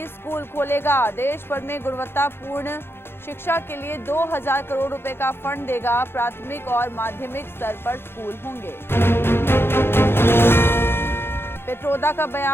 स्कूल खोलेगा। देश भर में गुणवत्तापूर्ण शिक्षा के लिए 2000 करोड़ रुपए का फंड देगा। प्राथमिक और माध्यमिक स्तर पर स्कूल होंगे। पित्रोदा का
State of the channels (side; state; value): right; late; 0.11 ms